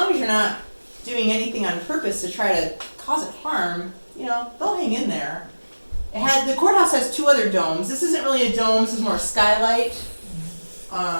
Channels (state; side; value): inverted; both; correlation -1.00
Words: as you're not doing anything on purpose to try to cause it harm, you know, they'll hang in there. The courthouse has 2 other domes. This isn't really a dome, this is more a skylight.